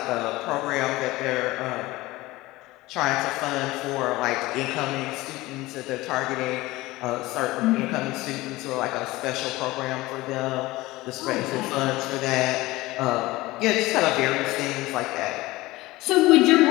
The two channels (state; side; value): quieter; right; 19.4 dB